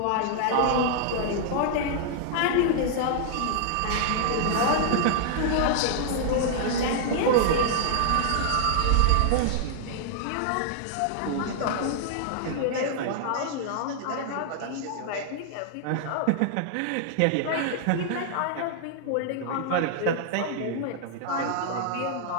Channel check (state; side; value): different; both; correlation -0.01